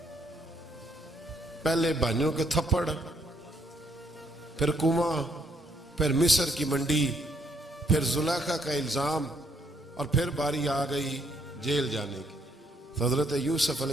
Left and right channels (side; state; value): both; normal; correlation 0.70